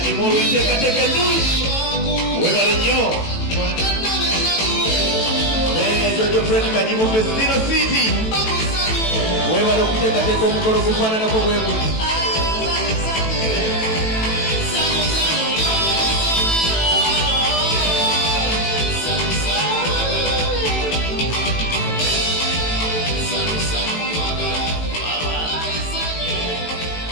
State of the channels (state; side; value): late; right; 18 ms